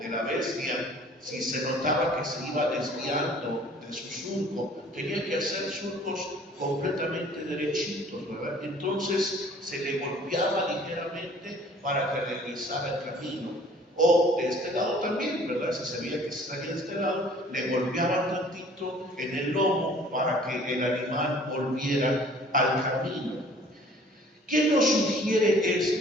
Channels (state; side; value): normal; both; correlation 0.52